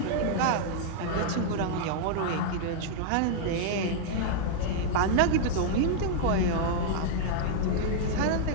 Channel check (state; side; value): different; both; correlation -0.01